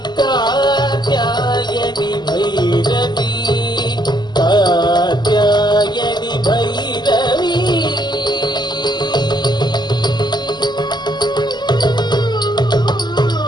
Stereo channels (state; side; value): late; right; 0.21 ms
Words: कात्यायनी भैरवी कात्यायनी भैरवी